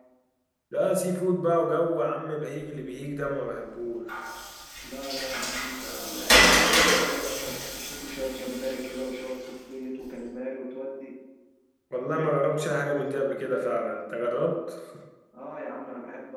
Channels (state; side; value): identical; both; correlation 1.00